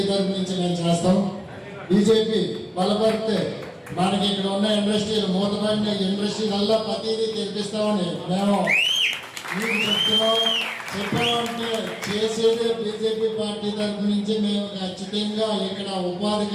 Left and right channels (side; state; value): both; identical; correlation 1.00